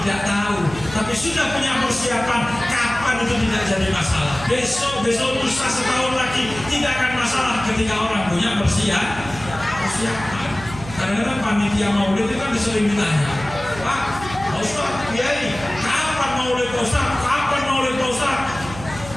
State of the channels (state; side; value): noise; right; hum, 14 dB below the sound